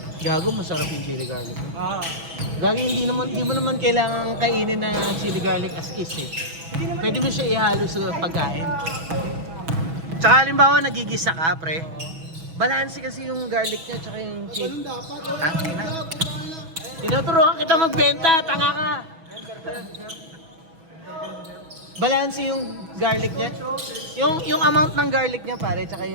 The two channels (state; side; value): late; left; 6.1 ms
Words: Gago, masarap yung chili garlic. Ah. Gago, hindi mo naman kailangan kainin na chili garlic as is eh. Pwede mo siya ihalo sa pagkain. Tsaka halimbawa nagigisa ka, pre. Balanse kasi yung garlic niya tsaka yung chili. Ganun dapat. Tangina. Tinuturuan kita magbenta, tanga ka. Balanse yung garlic niya. Yung amount ng garlic niya, pare, tsaka